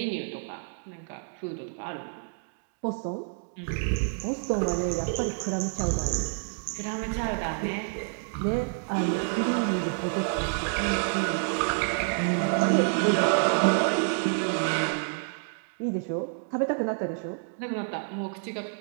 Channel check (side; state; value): left; silent; digital silence